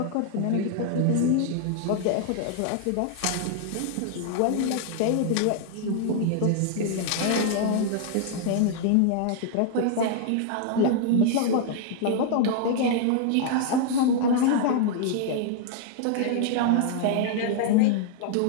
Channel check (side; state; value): both; different; correlation 0.00